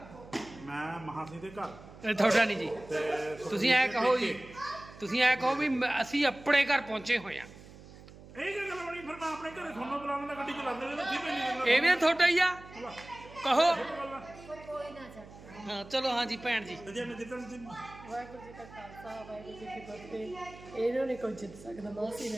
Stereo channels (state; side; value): noise; right; hum, 18 dB below the sound